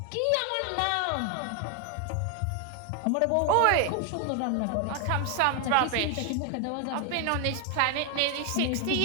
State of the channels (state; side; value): different; both; correlation 0.00